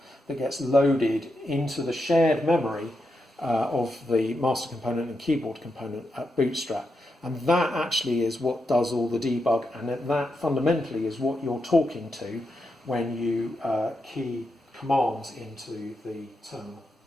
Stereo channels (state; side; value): normal; both; correlation 0.85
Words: that gets loaded into the shared memory of the master component and keyboard component at Bootstrap. And that actually is what does all the debug, and that fundamentally is what you're talking to when you key commands into the terminal.